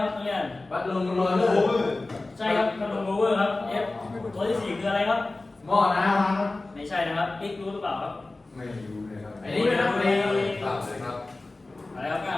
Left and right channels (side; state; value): right; quieter; 3.1 dB